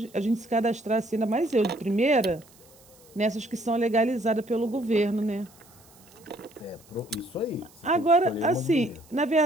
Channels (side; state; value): right; noise; hiss, 26 dB below the sound